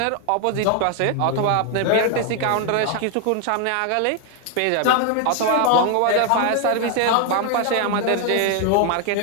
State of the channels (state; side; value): different; both; correlation 0.00